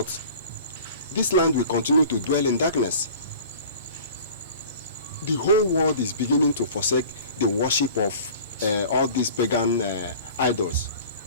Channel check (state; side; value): inverted; both; correlation -0.43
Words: this land will continue to dwell in darkness. The whole world is beginning to forsake the worship of all these pagan idols.